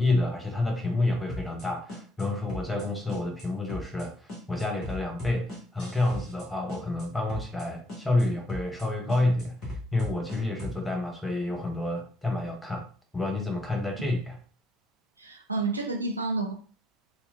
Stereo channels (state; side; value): normal; both; correlation 0.74